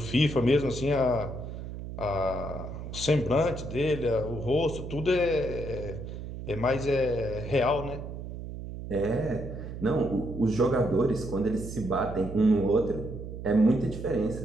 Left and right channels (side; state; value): right; noise; hum, 9 dB below the sound